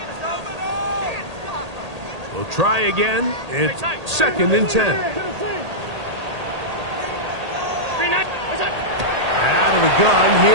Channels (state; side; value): late; left; 1.8 ms